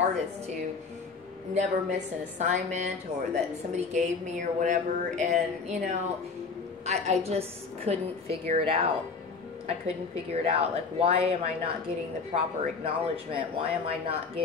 to never miss an assignment or that somebody gave me or whatever. And, you know, I just couldn't figure it out. I couldn't figure it out. Like, why am I not getting the proper acknowledgement? Why am I not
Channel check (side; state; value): right; quieter; 4.8 dB